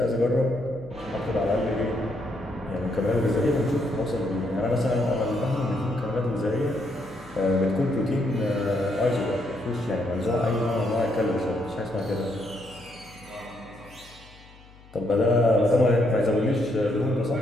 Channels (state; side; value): noise; left; hum, 24 dB below the sound